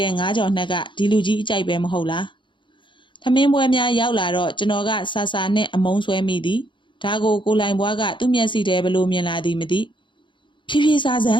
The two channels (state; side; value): late; right; 0.23 ms